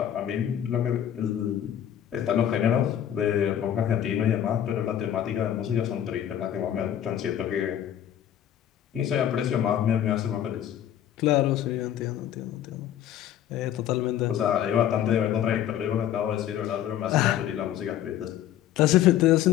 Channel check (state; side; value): quieter; right; 10.8 dB